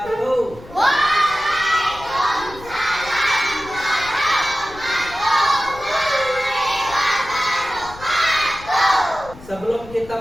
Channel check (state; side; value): noise; left; rumble, 18 dB below the sound